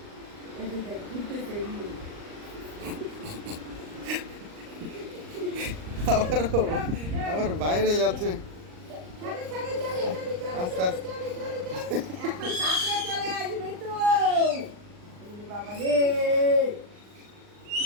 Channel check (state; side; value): late; left; 39 ms